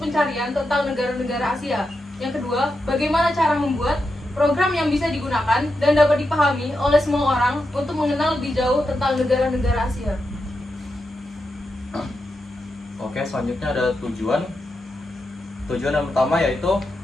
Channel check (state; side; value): normal; both; correlation 0.87